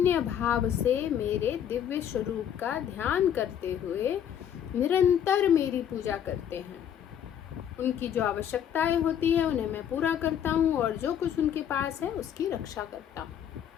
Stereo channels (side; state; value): right; quieter; 9.3 dB